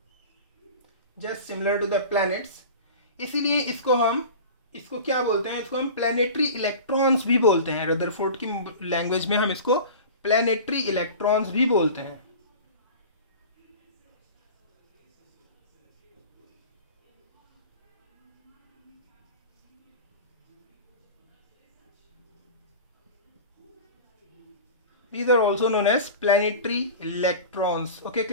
just similar to the planets, इसीलिए इसको क्या बोलते हैं, इसको हम प्लैनेटरी इलेक्ट्रॉन्स भी बोलते हैं। रदरफोर्ड की लैंग्वेज में हम इसको प्लैनेटरी इलेक्ट्रॉन्स भी बोलते हैं। These are also known as planetary electrons. Okay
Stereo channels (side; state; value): both; inverted; correlation -0.36